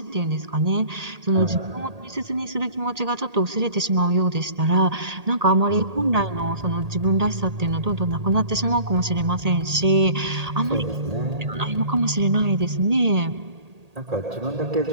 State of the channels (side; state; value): left; late; 1.8 ms